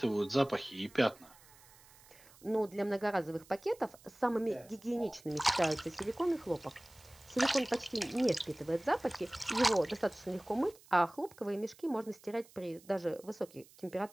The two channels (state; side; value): noise; right; hiss, 25 dB below the sound